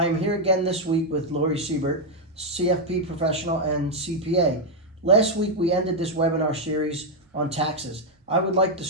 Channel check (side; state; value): both; normal; correlation 0.00